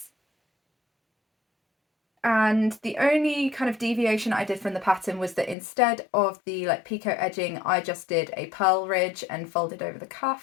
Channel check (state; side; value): drops out; right; at 5.6 s